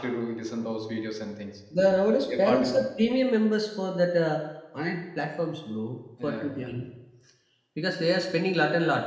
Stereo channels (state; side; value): identical; both; correlation 1.00